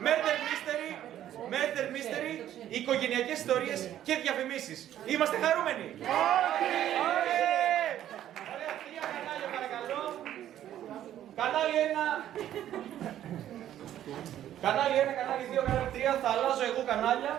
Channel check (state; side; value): quieter; left; 11.7 dB